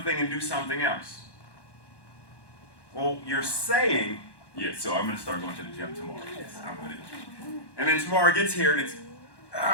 thing and do something else. Well, you're saying, yes, so I'm going to start going to the gym tomorrow. Yes, I'm going to. And then tomorrow gets here and it's,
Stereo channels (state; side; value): late; right; 1.1 ms